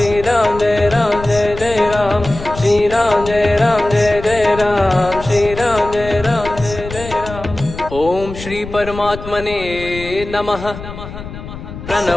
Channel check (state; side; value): noise; left; rumble, 12 dB below the sound